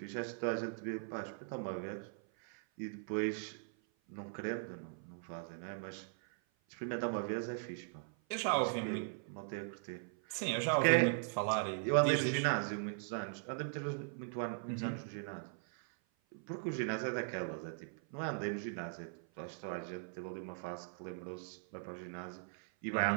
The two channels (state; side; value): silent; left; 51 dB below the other